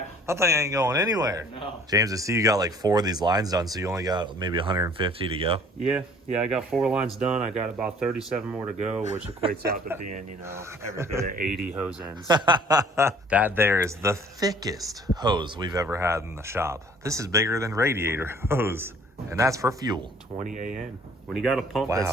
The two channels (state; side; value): normal; both; correlation 0.54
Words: That thing ain't going anywhere. No. James, I see you got like 4 of these lines done, so you only got maybe 150 to go. Yeah, I got 4 lines done. I got about 37 more to go, which equates out to being, you know, every bit of 80 hose ends. That there is the thickest hose we've ever had in the shop. This is bigger than radiator hose, and that's for fuel. 20 AN. When you got a pump Wow.